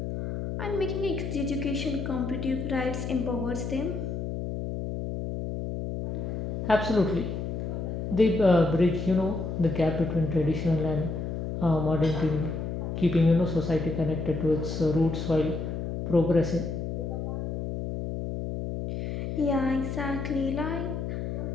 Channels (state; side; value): noise; left; hum, 4 dB below the sound